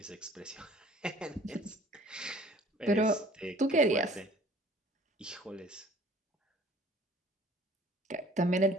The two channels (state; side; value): normal; both; correlation 0.52